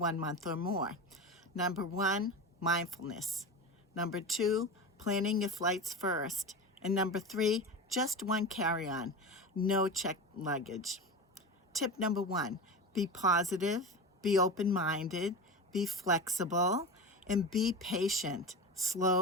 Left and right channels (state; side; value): normal; both; correlation 0.26